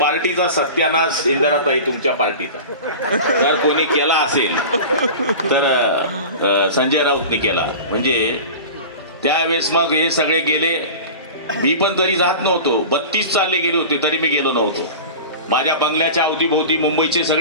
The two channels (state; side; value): inverted; both; correlation -0.34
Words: सत्यानाश इंदिराताई तुमच्या पार्टीचा जर कोणी केला असेल तर संजय राऊतनी केला. म्हणजे त्यावेळेस मग हे सगळे गेले. मी पण तरी जात नव्हतो. 32 चालले गेले होते तरी मी गेलो नव्हतो. माझ्या बंगल्याच्या अवतीभोवती मुंबईचे